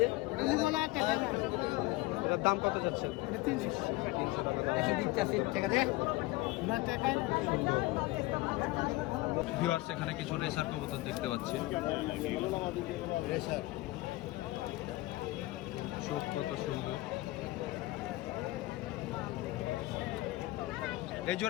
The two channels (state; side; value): quieter; right; 19.7 dB